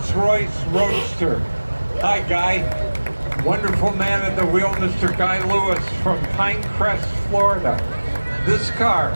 Roadster. Hi, Guy. Wonderful man at the wheel, Mr. Guy Lewis from Pinecrest, Florida. This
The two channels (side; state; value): both; inverted; correlation -1.00